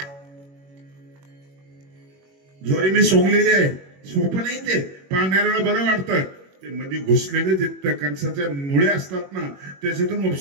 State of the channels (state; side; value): late; left; 21 ms